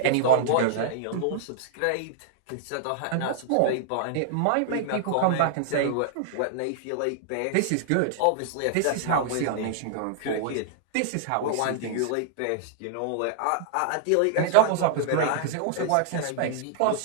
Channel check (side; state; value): both; different; correlation -0.01